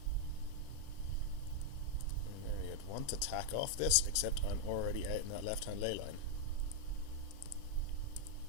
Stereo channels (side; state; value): both; different; correlation 0.00